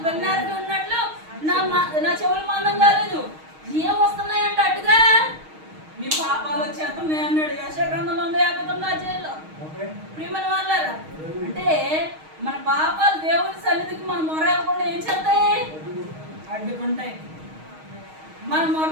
వెన్నెరవి ఉన్నట్లు నా చెవులు మందం కాలేదు. ఏం వస్తున్నాయంట అడ్డుగా? మీ పాపాలు వచ్చేస్తున్నాయి అన్నాడు యెషయా గ్రంథంలో 159 ప్రియమైన వాళ్ళారా. అంటే మన పాపాలు దేవుని సన్నిధికి మన మొరకుండా ఏం చేస్తాయి? అడ్డుకుంటాయి. మన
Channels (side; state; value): left; late; 6.4 ms